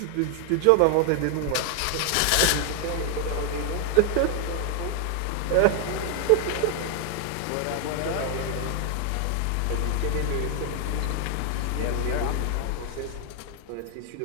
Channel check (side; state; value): both; different; correlation 0.00